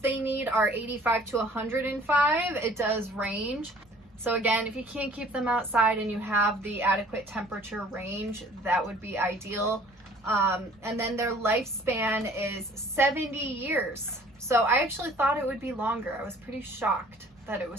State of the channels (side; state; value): both; normal; correlation 0.53